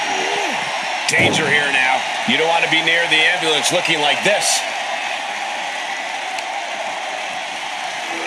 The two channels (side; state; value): both; identical; correlation 1.00